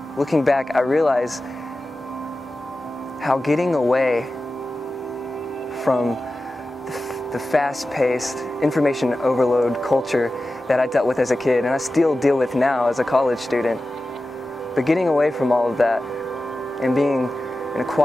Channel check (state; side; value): normal; both; correlation 0.94